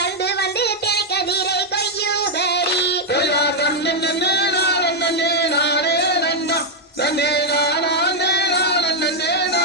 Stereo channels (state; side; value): normal; both; correlation -0.01